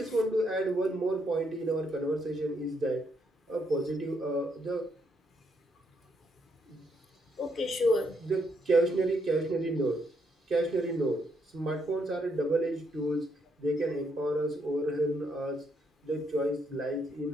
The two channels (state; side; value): normal; both; correlation 0.75